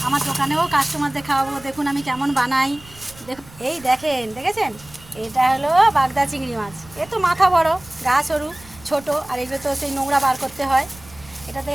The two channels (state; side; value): noise; right; rumble, 22 dB below the sound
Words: আমার দোকানেও কাস্টমারদের খাওয়াবো। দেখুন আমি কেমন বানাই। দেখুন, এই দেখেছেন, এটা হলো বাগদা চিংড়ি মাছ। এ তো মাথা বড়, গা সরু, ছোটো, আর এগুলো তো সেই নোংরা বার করতে হয়। এটা তো